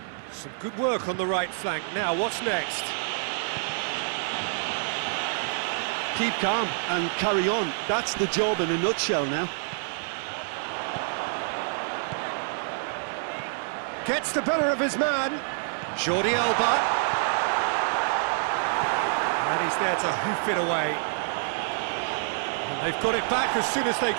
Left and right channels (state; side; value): silent; left; 56 dB below the other